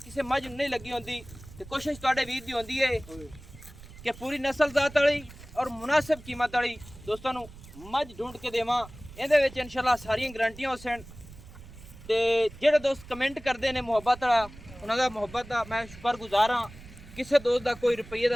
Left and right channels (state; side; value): noise; right; rumble, 18 dB below the sound